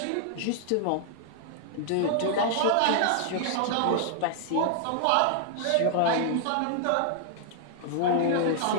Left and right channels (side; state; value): both; different; correlation -0.01